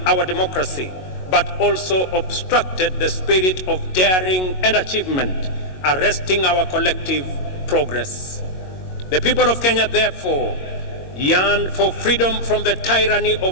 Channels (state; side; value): late; right; 22 ms